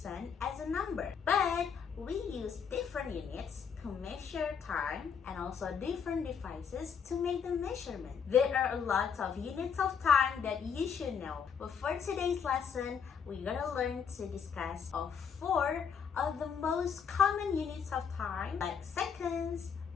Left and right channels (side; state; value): right; quieter; 6.9 dB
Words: as a number. But we use different units to measure time and also different devices to make the measurement. There are a lot of units of time that you should know. But for today's lesson, we're gonna learn to discuss of 4 of the most common units of time, like seconds,